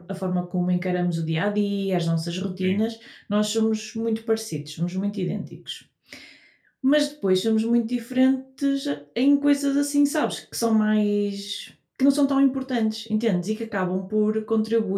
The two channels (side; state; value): both; identical; correlation 1.00